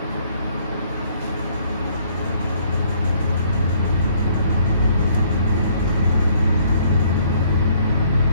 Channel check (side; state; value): both; inverted; correlation -0.63